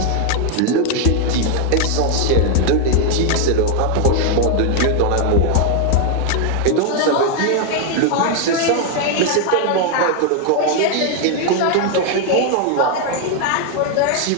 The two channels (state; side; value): different; both; correlation 0.01